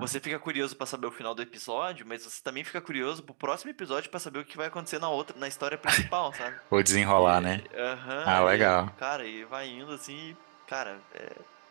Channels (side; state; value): left; silent; digital silence